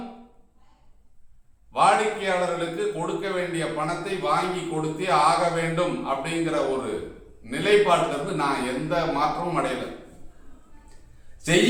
வாடிக்கையாளர்களுக்கு கொடுக்க வேண்டிய பணத்தை வாங்கி கொடுத்தே ஆக வேண்டும் அப்படிங்கிற ஒரு நிலைப்பாட்டிலிருந்து நான் எந்த மாற்றமும் அடையல.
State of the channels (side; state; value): both; identical; correlation 1.00